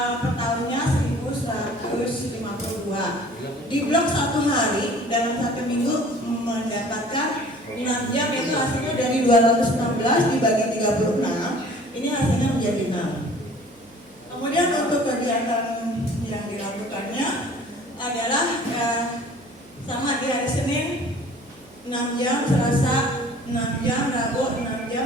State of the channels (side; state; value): right; noise; hum, 29 dB below the sound